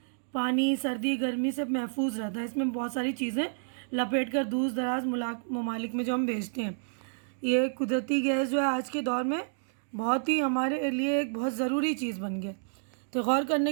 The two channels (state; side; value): silent; left; digital silence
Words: पानी सर्दी गर्मी से महफूज रहता है। इसमें बहुत सारी चीज़ें लपेट कर दूर दराज ममालिक में जो हम भेजते हैं। ये कुदरती गैस जो है आज के दौर में बहुत ही हमारे लिए एक बहुत ज़रूरी चीज़ बन गया। तो गौर